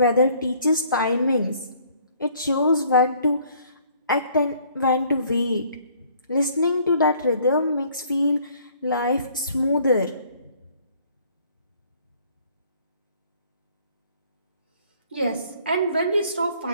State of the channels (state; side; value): inverted; both; correlation -0.59